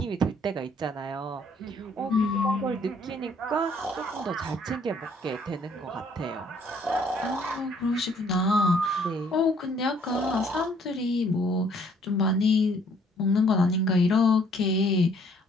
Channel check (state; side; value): normal; both; correlation 0.62